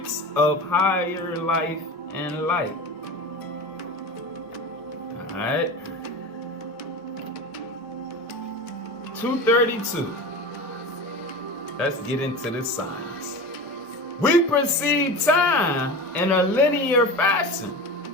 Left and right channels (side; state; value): both; normal; correlation 0.30